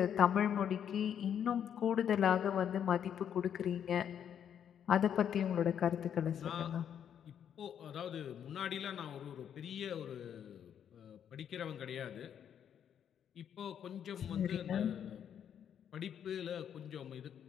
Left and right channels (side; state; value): right; quieter; 8.9 dB